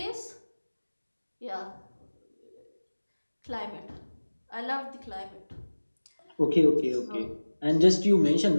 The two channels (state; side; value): inverted; both; correlation -1.00